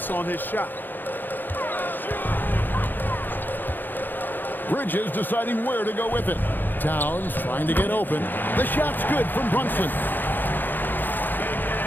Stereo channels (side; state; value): right; late; 0.090 ms